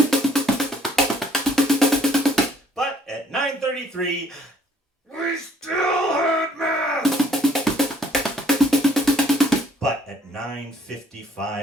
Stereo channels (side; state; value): both; normal; correlation 0.62